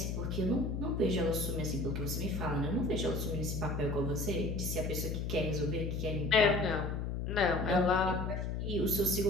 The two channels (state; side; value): noise; left; hum, 2 dB below the sound